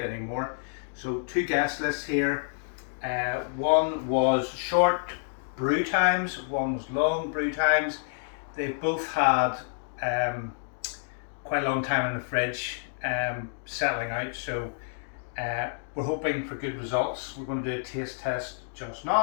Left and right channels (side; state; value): right; silent; digital silence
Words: anymore. So 2 guest lists here. One was short brew times, one was long brew times. They've both had quite a long time in the fridge, settling out, so we're hoping for good results. We're going to do a taste test just